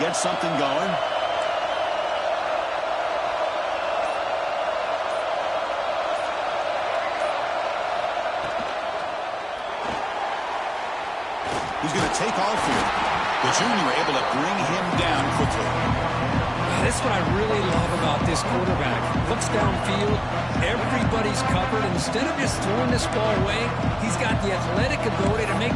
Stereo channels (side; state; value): both; identical; correlation 1.00